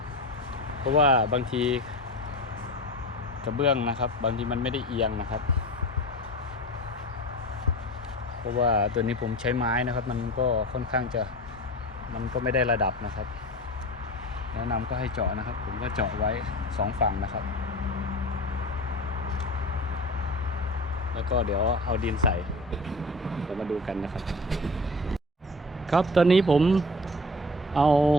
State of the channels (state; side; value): normal; both; correlation 0.33